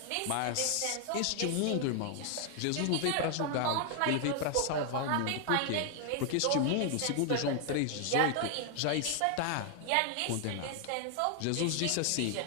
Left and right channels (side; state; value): both; different; correlation 0.00